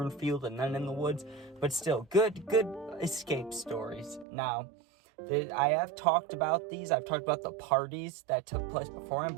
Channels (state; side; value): drops out; left; at 4.2 s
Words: and then in the woods. But still, good escape stories. Now, I have talked about these. I've talked about the parties that took place beforehand,